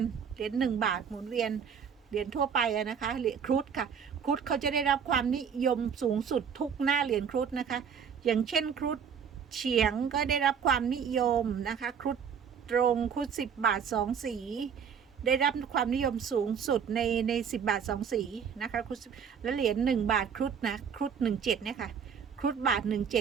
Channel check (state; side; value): quieter; left; 7.1 dB